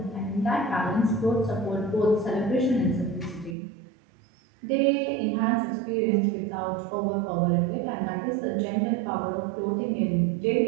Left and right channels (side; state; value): left; drops out; at 3.6 s